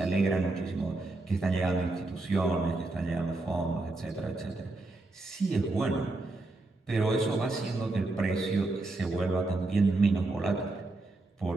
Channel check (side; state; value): left; quieter; 3.1 dB